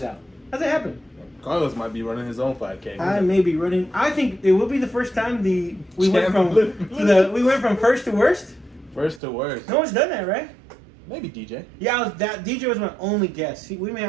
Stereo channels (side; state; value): left; drops out; at 9.2 s